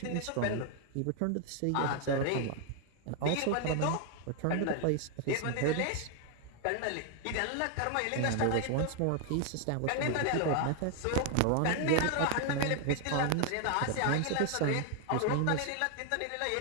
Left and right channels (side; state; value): both; different; correlation 0.00